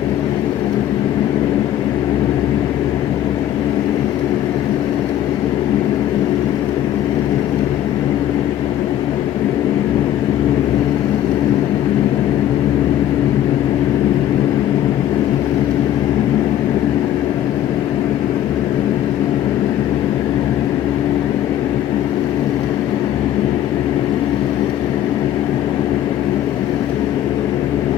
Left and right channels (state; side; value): quieter; right; 11.6 dB